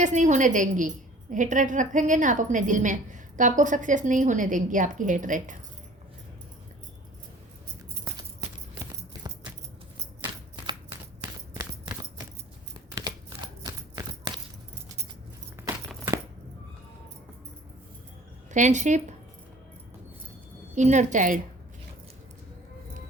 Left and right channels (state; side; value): normal; both; correlation 0.48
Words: नहीं होने देंगी। हेटरेट रखेंगे ना आप अपने दिल में, तो आपको सक्सेस नहीं होने देंगी आपकी hatred. Friendship, inner child.